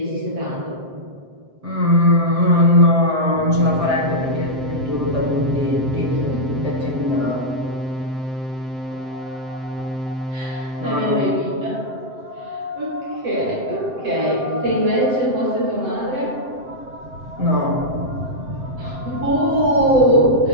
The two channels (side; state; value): left; late; 7.7 ms